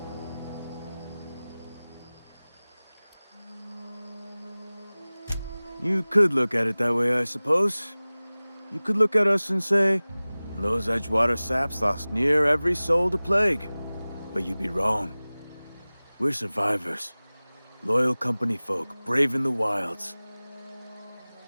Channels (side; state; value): both; inverted; correlation -0.99